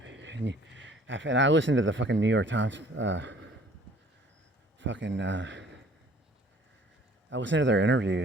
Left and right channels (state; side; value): normal; both; correlation 0.54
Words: and I listen to the fucking New York Times. I listen to their